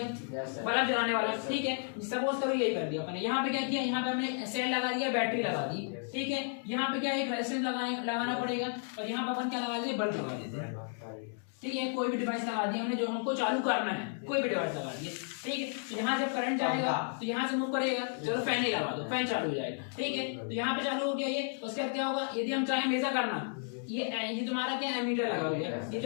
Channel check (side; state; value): right; silent; 56 dB below the other